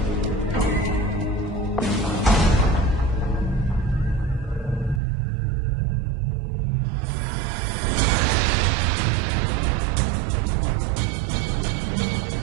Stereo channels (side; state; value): left; drops out; at 5.0 s